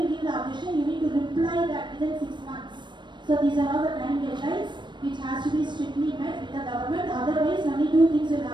give the objection, you need to reply that within 6 months. So these are all the time deadlines which has to be strictly met with the government, otherwise only 2 things will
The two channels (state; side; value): late; left; 0.22 ms